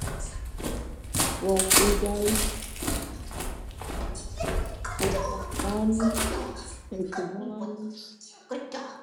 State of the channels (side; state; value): both; identical; correlation 1.00